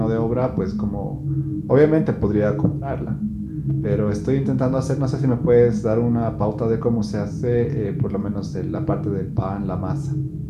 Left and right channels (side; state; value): both; identical; correlation 1.00